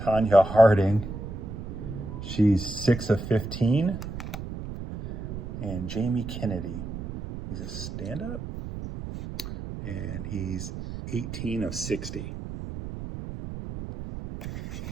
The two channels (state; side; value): noise; right; rumble, 8 dB below the sound